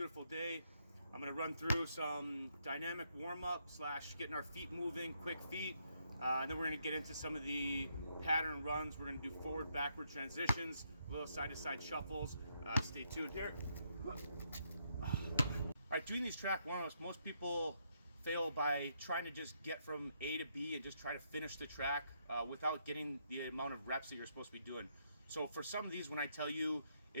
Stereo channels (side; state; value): both; inverted; correlation -0.76